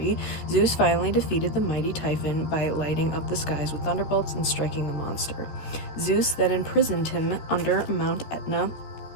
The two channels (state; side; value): late; right; 14 ms